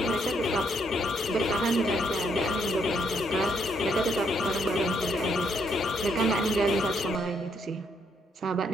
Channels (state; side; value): normal; both; correlation 0.73